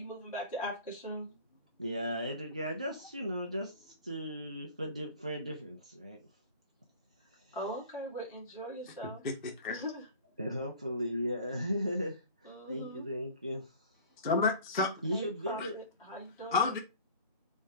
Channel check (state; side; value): inverted; both; correlation -0.43